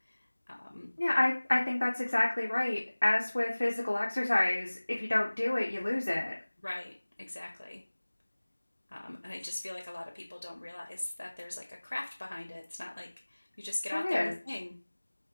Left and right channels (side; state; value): both; inverted; correlation -1.00